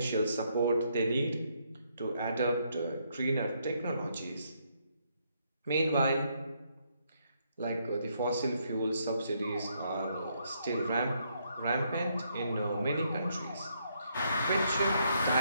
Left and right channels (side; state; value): both; inverted; correlation -0.74